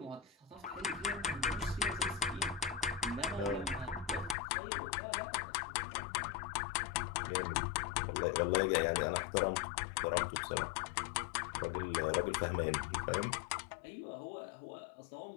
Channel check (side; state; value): right; drops out; at 4.4 s